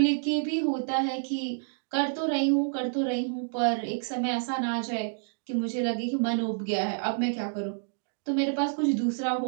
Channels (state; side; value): silent; left; digital silence